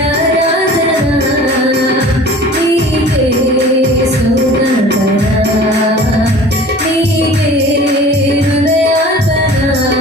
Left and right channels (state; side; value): normal; both; correlation 0.43